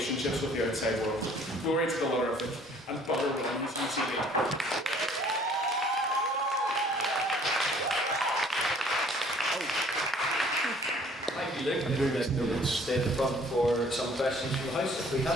with the outside world. Glory to the Ludderific and butter within UCD. Thank you, Luke. I think we can stay at the front for some questions from the House if we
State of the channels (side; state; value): both; normal; correlation 0.56